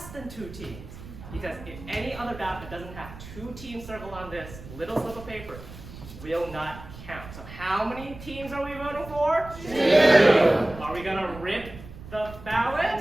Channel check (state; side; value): noise; right; rumble, 15 dB below the sound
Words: than 2 teams. Because if any other ballot that doesn't have 2 teams circled on this little slip of paper will not count. So how many teams are we voting for? 2. Are we gonna rip the